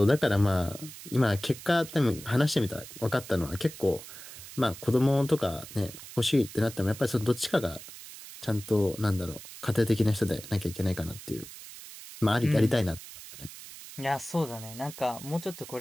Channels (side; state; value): right; noise; hiss, 14 dB below the sound